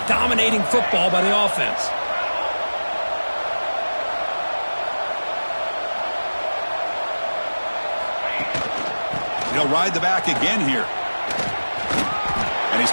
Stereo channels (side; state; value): both; inverted; correlation -1.00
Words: dominating football by the offense. He'll ride the back again here. And he's